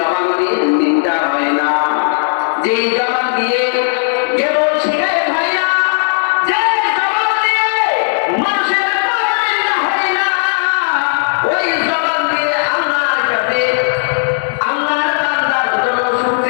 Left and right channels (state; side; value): silent; right; digital silence